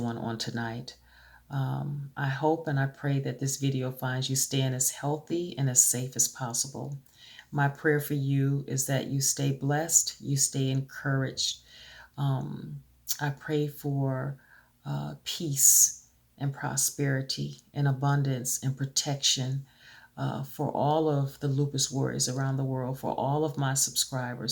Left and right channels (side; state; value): both; identical; correlation 1.00